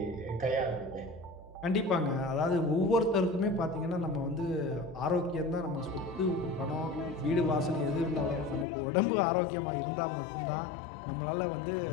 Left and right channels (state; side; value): drops out; right; at 8.7 s